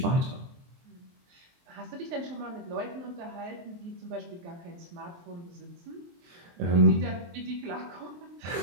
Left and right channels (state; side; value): late; left; 23 ms